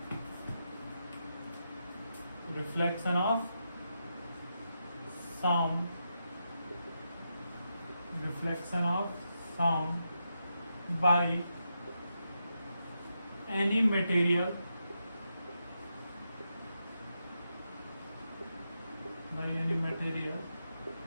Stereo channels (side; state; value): both; inverted; correlation -0.85